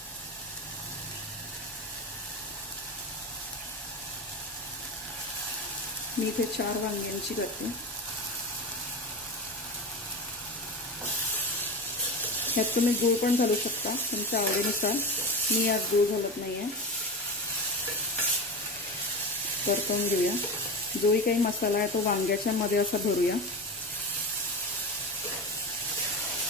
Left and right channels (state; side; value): normal; both; correlation 0.24